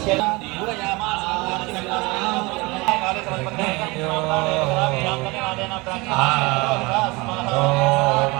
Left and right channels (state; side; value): quieter; left; 24.6 dB